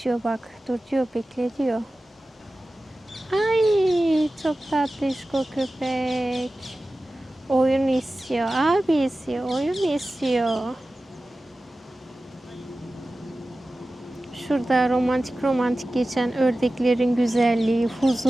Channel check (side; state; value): both; normal; correlation 0.95